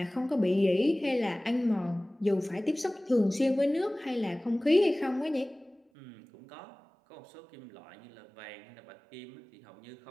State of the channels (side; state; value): left; drops out; at 5.8 s